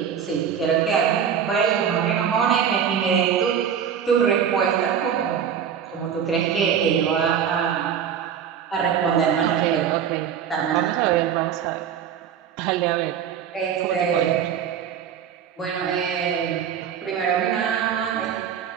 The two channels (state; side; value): quieter; left; 8.2 dB